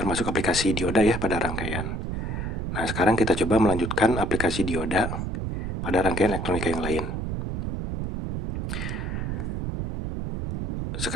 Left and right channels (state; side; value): noise; right; rumble, 3 dB below the sound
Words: aplikasi dioda ya pada rangkaian. Nah, sekarang kita coba melanjutkan aplikasi dioda pada rangkaian elektronika yang lain.